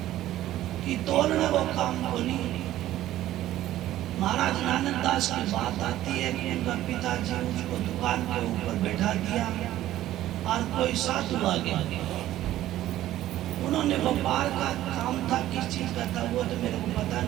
कि तोलने को काम को नहीं। महाराज नानक दास की बात आती है कि उनका पिताजी उसको दुकान के ऊपर बैठा दिया और कोई साधु आ गया। उन्होंने व्यापार का काम था, किस चीज का था वो तो मेरे को पता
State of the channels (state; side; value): quieter; left; 13.9 dB